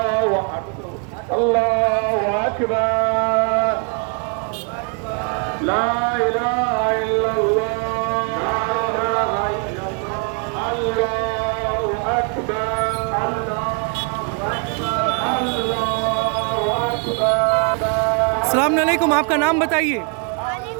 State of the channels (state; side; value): quieter; left; 36.9 dB